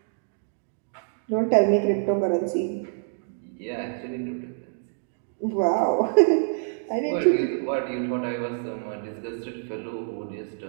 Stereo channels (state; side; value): silent; left; digital silence